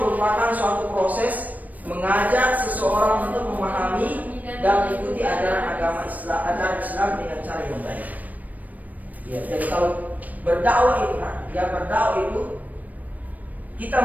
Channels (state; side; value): late; left; 0.077 ms